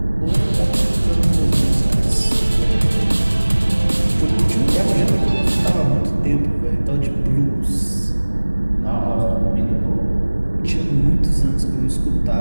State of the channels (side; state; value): both; inverted; correlation -1.00